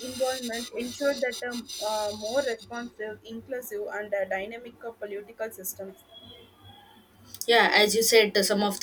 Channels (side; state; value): both; identical; correlation 1.00